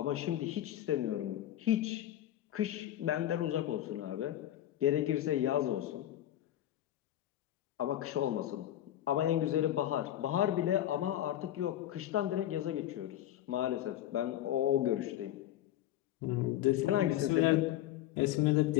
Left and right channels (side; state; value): right; quieter; 12.8 dB